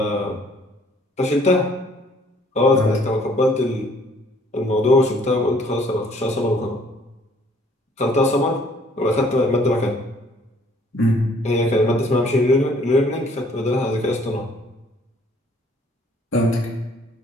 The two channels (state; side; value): normal; both; correlation 0.60